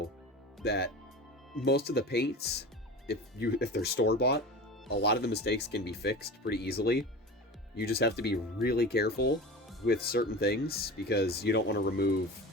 that most of the paints, if they're store bought, a lot of the mistakes can be fixed pretty easily. You just have to be really careful with certain things because you don't want to remove.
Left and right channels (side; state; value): both; normal; correlation 0.32